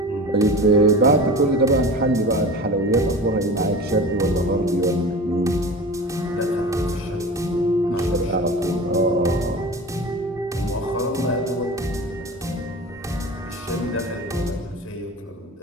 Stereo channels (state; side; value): normal; both; correlation 0.33